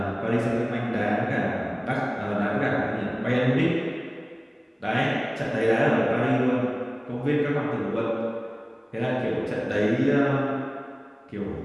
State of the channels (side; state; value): both; identical; correlation 1.00